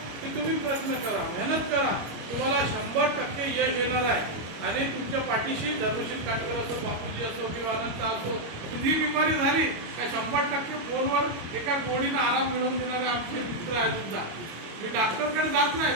की तुम्ही प्रयत्न करा, मेहनत करा. तुम्हाला 100% यश येणार आहे. आणि तुमच्या पाठीशी धर्मशील काटकर असो, बापूजी असो किंवा अनंत असो, कुठली बिमारी झाली काय 100% फोनवर एका गोडीनं आराम मिळवून देणारे आमचे मित्र आहेत सुद्धा. मी डॉक्टरकडे जात नाही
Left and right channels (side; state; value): left; late; 25 ms